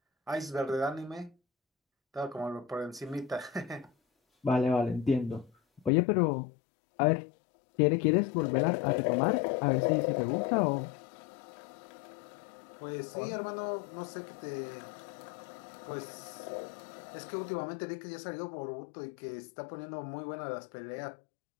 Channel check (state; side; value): drops out; right; at 5.9 s